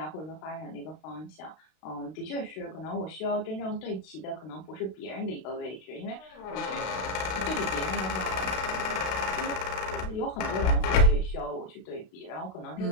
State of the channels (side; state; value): right; late; 32 ms